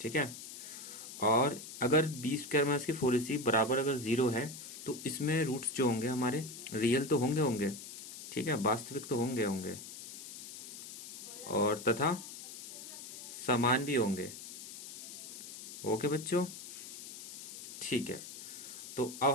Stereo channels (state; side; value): noise; left; hiss, 12 dB below the sound